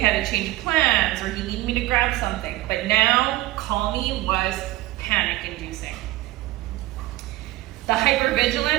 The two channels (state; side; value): quieter; left; 17.5 dB